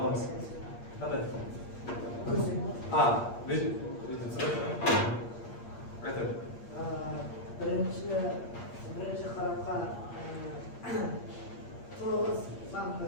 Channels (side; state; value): right; late; 8.6 ms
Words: Qanday? Aytadi. birinchi qarabqa to'g'riz san